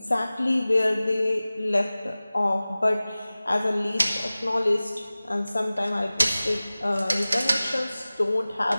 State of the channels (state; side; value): inverted; both; correlation -0.97